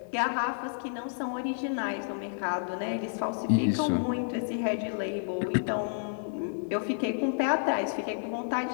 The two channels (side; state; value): right; silent; digital silence